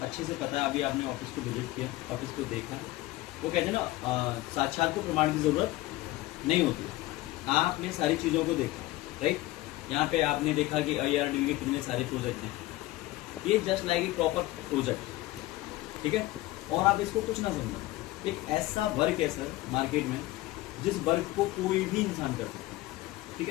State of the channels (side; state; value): right; quieter; 17.9 dB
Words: अच्छे से पता है, अभी आपने ऑफिस को विजिट किया, ऑफिस को देखा। वो कहते हैं ना, साक्षात को प्रमाण की ज़रूरत नहीं होती। आपने सारी चीज़ों को देखा, राइट। यहाँ पे आपने देखा कि ARDB के कितने सारे प्रोजेक्ट हैं। ये just like a proper project, ठीक है। और आप इसको कुछ ना समझो, एक ऐसा वर्क है सर मार्केट में जिस वर्क को कोई भी इंसान कर सकता है, ठीक